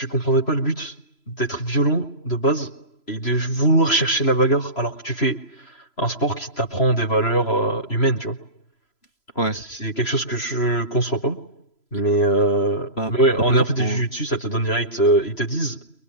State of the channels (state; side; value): late; right; 3.0 ms